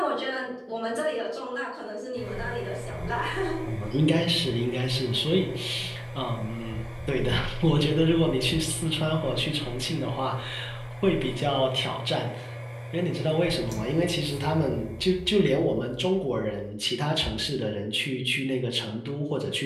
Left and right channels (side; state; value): both; identical; correlation 1.00